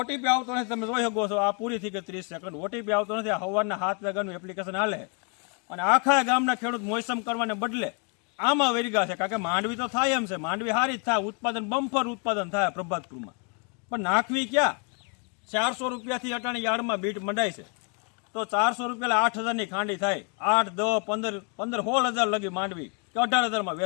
આવતો નથી. તમે જોઈ શકો છો આ પૂરી થઈ ગઈ 30 સેકન્ડ. ઓટીપી આવતો નથી. આ સવારના 7 વાગ્યાનું એપ્લિકેશન હાલે અને આખા ગામના ખેડૂત મોસમ કરવાને બદલે આમાં વેરગા છે. કારણ કે માંડવી તો થાય એમ છે, માંડવી સારી જ થાય, ઉત્પાદન બમ્પર ઉત્પાદન થાય પ્રભાતપુરમાં. પણ નાખવી ક્યાં? 400 રૂપિયાથી અટાણી યાર્ડમાં બીટ મંડાય છે. તો 400 રૂપિયા 8,000ની ખાંડી થાય. 8, 10, 15, 16,000 લગી માંડવી કે 18,000માં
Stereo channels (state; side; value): quieter; right; 36.5 dB